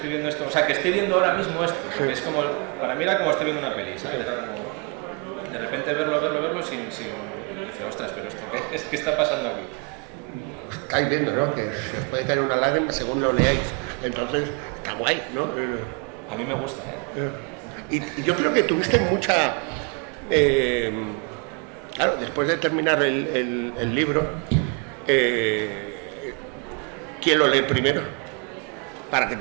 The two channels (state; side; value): quieter; left; 33.8 dB